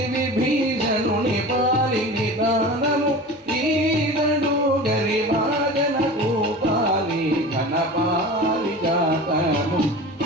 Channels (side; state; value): both; normal; correlation 0.34